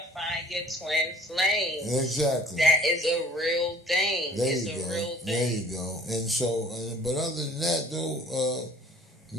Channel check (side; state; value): both; normal; correlation 0.50